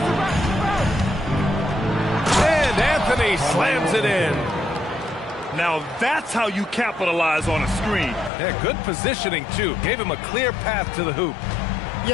And Anthony slams it in. Now that's how you capitalize on a screen. Yeah, good positioning too. Gave him a clear path to the hoop.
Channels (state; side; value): drops out; right; at 8.3 s